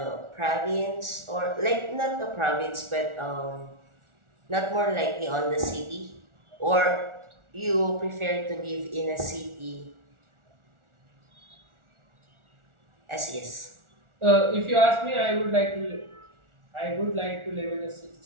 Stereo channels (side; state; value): left; late; 1.4 ms